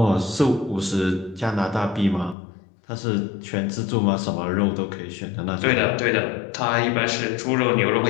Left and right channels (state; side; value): drops out; right; at 2.4 s